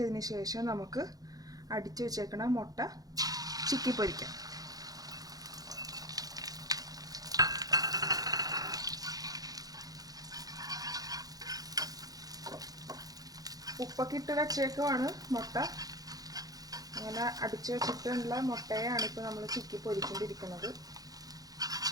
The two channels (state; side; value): late; left; 0.18 ms